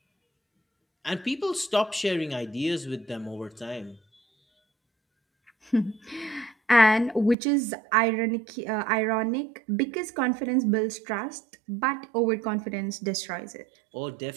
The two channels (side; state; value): left; drops out; at 7.4 s